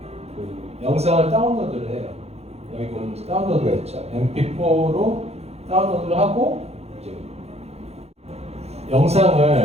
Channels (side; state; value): left; late; 0.31 ms